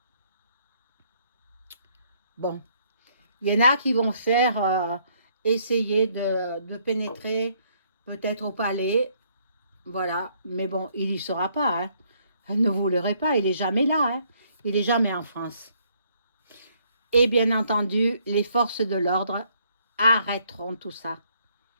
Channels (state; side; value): inverted; both; correlation -0.68